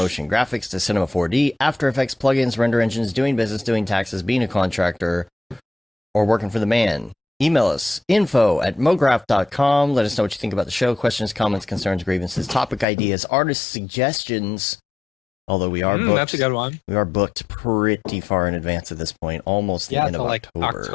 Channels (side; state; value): right; drops out; at 12.9 s